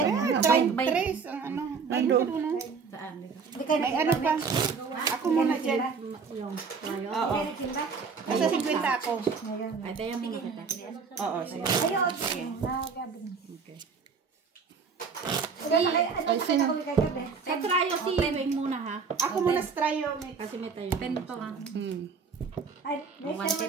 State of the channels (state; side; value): quieter; left; 5.4 dB